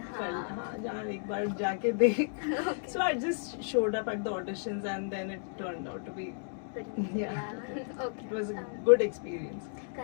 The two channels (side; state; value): right; silent; digital silence